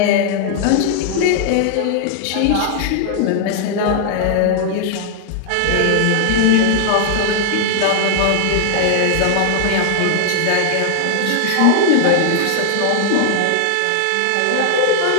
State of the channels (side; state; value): both; different; correlation 0.00